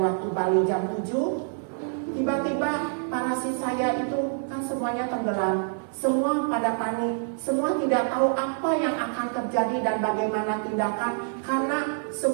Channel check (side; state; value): left; silent; 61 dB below the other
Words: Bali jam 7. Tiba-tiba parasit saya itu kan semuanya tenggelam. Semua pada panik, semua tidak tahu apa yang akan terjadi dan bagaimana tindakan, karena